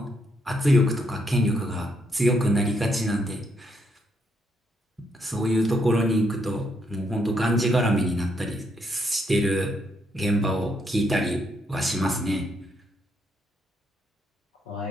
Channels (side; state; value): both; normal; correlation 0.75